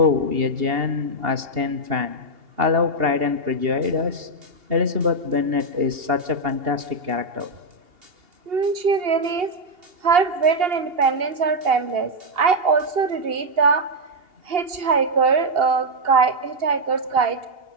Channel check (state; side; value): late; left; 2.8 ms